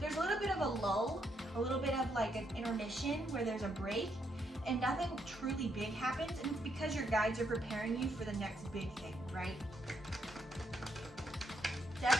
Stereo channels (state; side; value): normal; both; correlation 0.76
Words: there's a little bit of a lull, a little bit of like an intermission where there's a break and nothing truly big happens, and it's because your guides are preparing you for the next big thing, right?